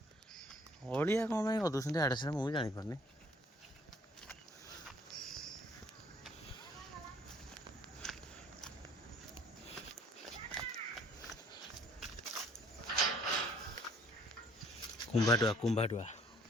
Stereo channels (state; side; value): normal; both; correlation 0.59